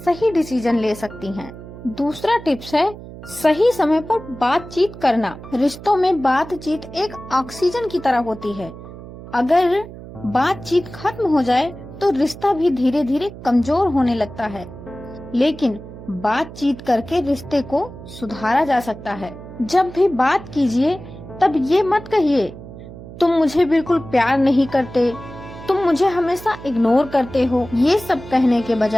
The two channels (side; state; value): right; noise; hum, 14 dB below the sound